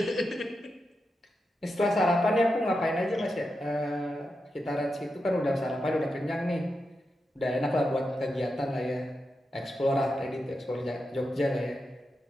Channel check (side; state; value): both; normal; correlation 0.88